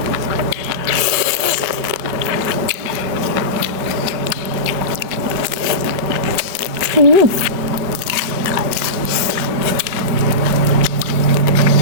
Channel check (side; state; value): left; late; 5.4 ms